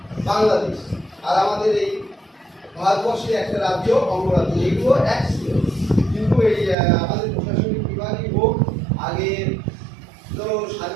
বাংলাদেশ, আর আমাদের এই ভারতবর্ষের একটা রাজ্য অঙ্গরাজ্য, এগুলো এক ছিল। কিন্তু এই আমাদের প্রশাসনিক বিভাগই হোক, আগে ধরো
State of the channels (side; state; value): left; drops out; at 6.8 s